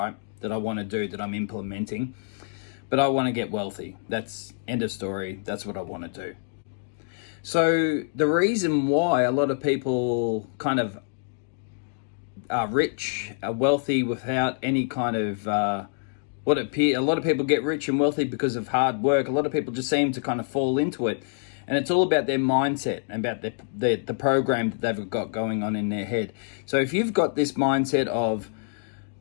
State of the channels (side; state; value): right; silent; digital silence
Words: That I want to do, that I'm implementing. But I want to get wealthy. That's end of story. That's what I want to do. So the reason why a lot of people kind of are rich, are wealthy without any kind of a lot of people get rich and wealthy because of hard work. A lot of people just seem to kind of fall into it. And it's all about their mindset and about the program that they've got going on in their head. So if you've got this mindset of,